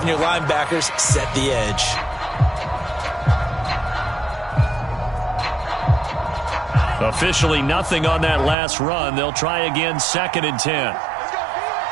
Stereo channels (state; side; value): drops out; left; at 8.6 s